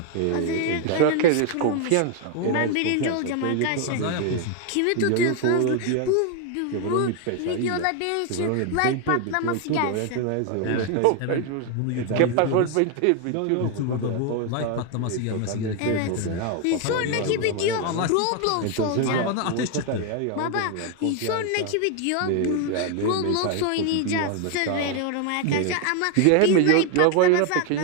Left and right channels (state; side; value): different; both; correlation 0.01